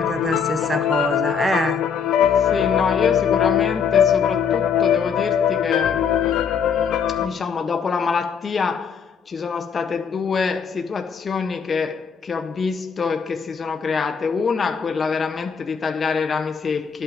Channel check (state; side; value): quieter; right; 6.4 dB